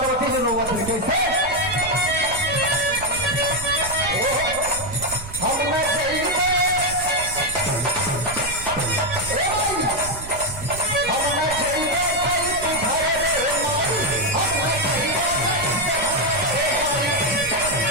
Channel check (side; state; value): right; noise; rumble, 13 dB below the sound